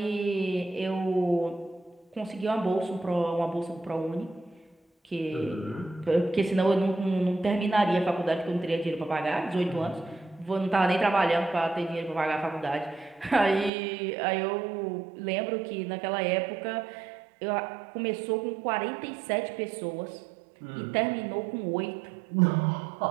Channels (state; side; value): drops out; left; at 13.7 s